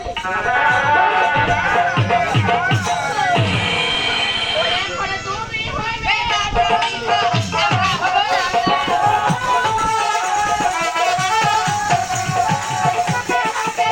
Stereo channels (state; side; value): identical; both; correlation 1.00